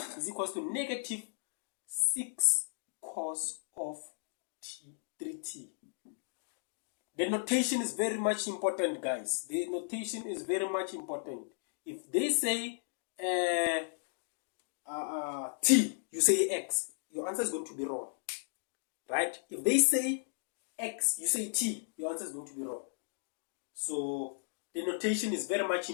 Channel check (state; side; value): silent; right; digital silence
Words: Is equals to negative 6 cos of 3t. The notation is very much important, guys. The notation is very much important. If they say t, you say x, your answer is going to be wrong, right? If they say x, you say t, your answer is going to be wrong. So the notation is very much